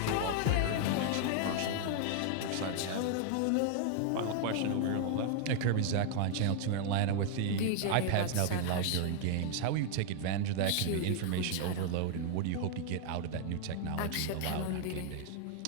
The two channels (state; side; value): different; both; correlation 0.00